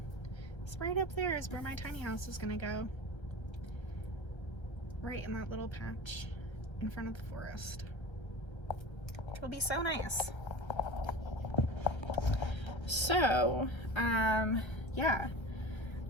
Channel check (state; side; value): late; right; 1.3 ms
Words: is right up there is where my tiny house is gonna go. Right in that little patch in front of the forest. It'll be so nice. So, yeah,